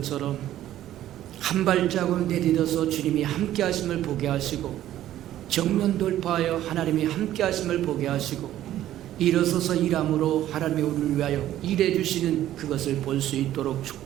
한 발자국을 내딛어서 주님이 함께 하심을 보게 하시고 정면 돌파하여 하나님이 함께 하심을 보게 하시고 일어서서 일함으로 하나님이 우리를 위하여 일해 주시는 그것을 볼 수 있도록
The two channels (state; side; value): quieter; left; 12.9 dB